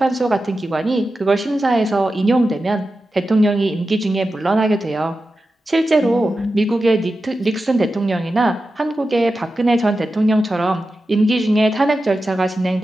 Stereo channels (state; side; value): normal; both; correlation 0.92